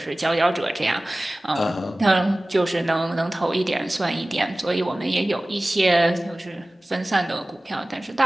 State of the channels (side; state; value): both; normal; correlation 0.98